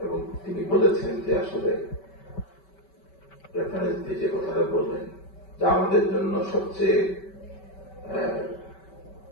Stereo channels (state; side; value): late; right; 5.2 ms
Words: এবং তিনি বলেছেন যে আসলে রেফারেন্স দিয়ে যে কথাটা বললেন, যা আমাদের জন্য সবচেয়ে